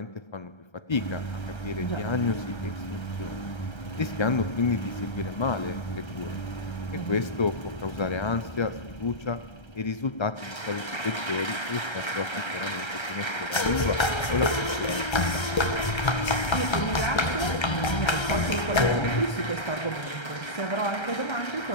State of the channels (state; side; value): late; right; 1.3 ms